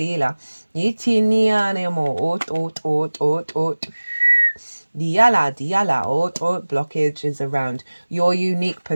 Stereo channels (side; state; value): both; inverted; correlation -1.00